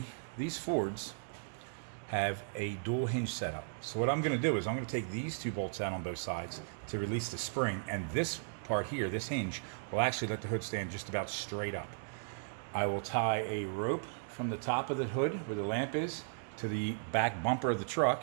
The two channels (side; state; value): left; silent; digital silence